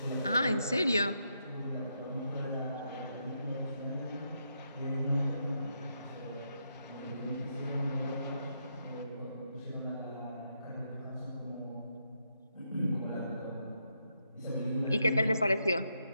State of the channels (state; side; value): inverted; both; correlation -0.80